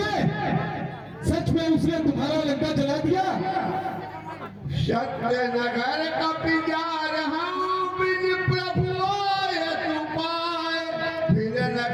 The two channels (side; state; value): both; identical; correlation 1.00